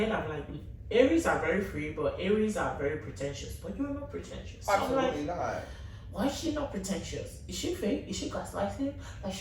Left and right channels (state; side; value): identical; both; correlation 1.00